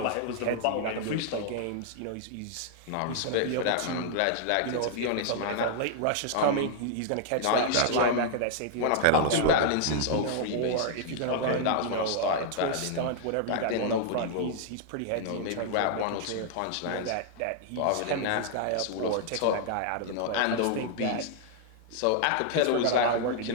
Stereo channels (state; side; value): different; both; correlation -0.01